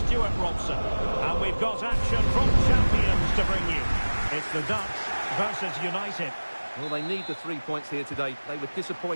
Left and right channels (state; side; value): inverted; both; correlation -1.00